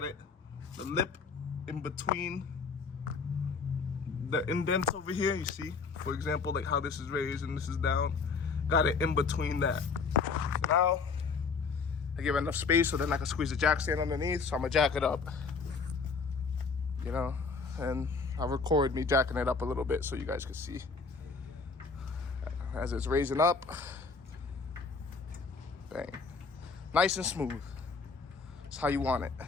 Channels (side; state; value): right; quieter; 4.8 dB